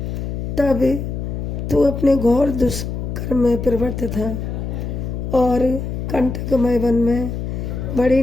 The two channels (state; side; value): noise; left; hum, 4 dB below the sound